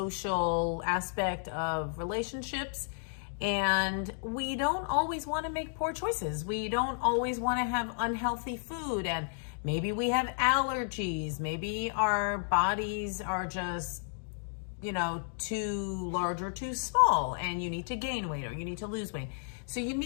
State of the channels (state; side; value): silent; right; digital silence